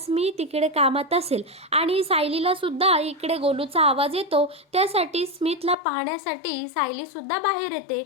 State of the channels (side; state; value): right; drops out; at 5.8 s